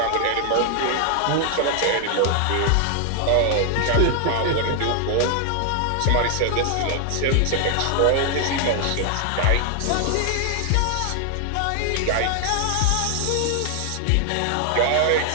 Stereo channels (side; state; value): both; different; correlation 0.00